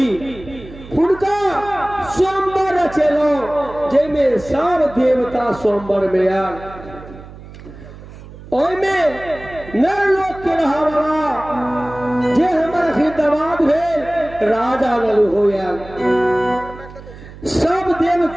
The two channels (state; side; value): noise; right; hum, 17 dB below the sound